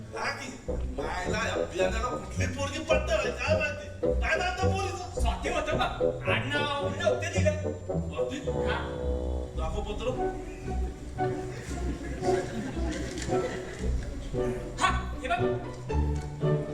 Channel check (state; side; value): identical; both; correlation 1.00